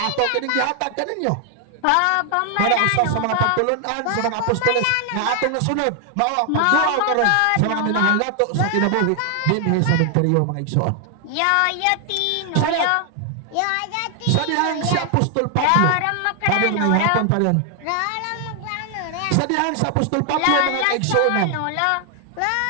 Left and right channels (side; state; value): both; different; correlation 0.00